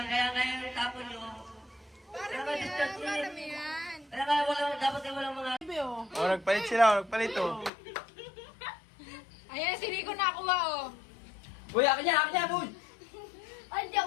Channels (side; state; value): right; drops out; at 7.7 s